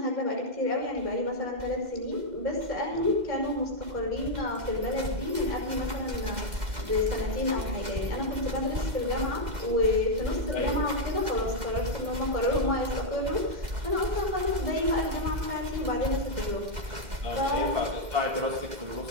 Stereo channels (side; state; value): left; late; 2.0 ms